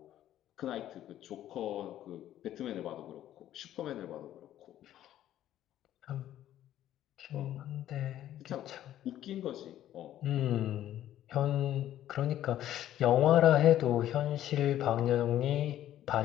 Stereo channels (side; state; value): right; quieter; 12.3 dB